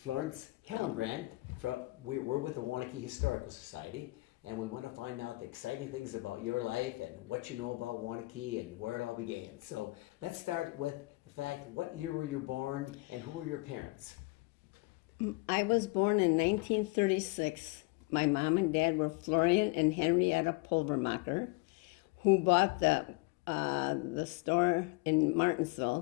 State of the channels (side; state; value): right; quieter; 23.7 dB